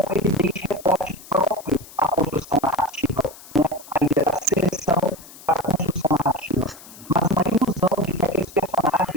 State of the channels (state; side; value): noise; left; hiss, 19 dB below the sound